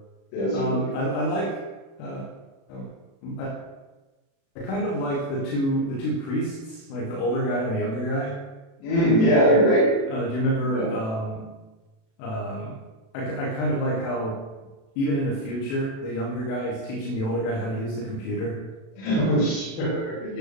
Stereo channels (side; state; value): right; late; 36 ms